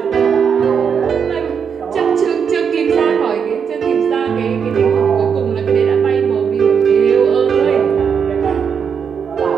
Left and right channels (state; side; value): quieter; left; 6.9 dB